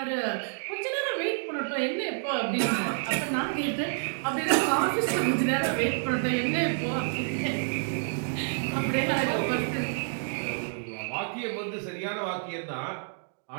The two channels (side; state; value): left; silent; digital silence